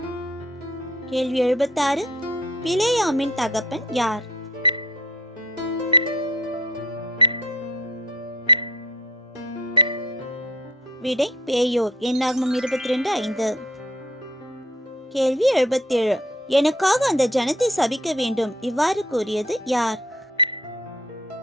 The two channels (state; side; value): normal; both; correlation 0.52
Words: கேள்வி 76. பிலேயாமின் தகப்பன் யார்? விடை பேயோர். என்னாகமம் 22:5. கேள்வி 77. எனக்காக அந்த ஜனத்தை சபிக்க வேண்டும் இவ்வாறு கூறியது யார்?